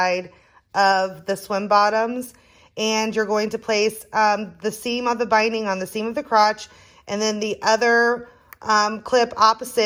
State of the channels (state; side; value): identical; both; correlation 1.00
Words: of the swim bottoms. And you're going to place the seam of the binding on the seam of the crotch, and then the other clip